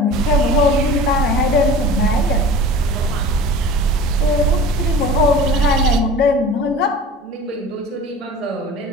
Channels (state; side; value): normal; both; correlation 0.39